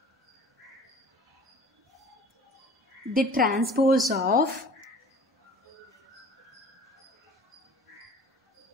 the transpose of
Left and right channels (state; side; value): normal; both; correlation 0.45